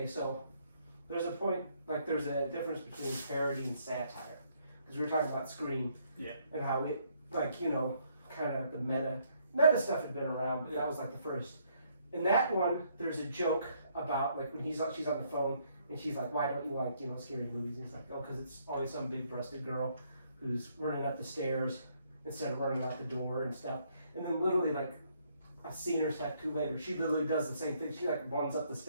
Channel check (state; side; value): inverted; both; correlation -0.69